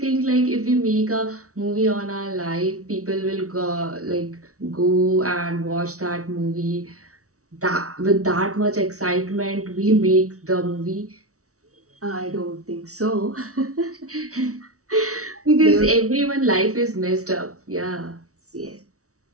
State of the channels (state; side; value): late; left; 0.65 ms